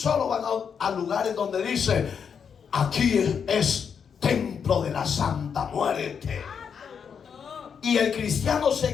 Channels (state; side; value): quieter; right; 6.9 dB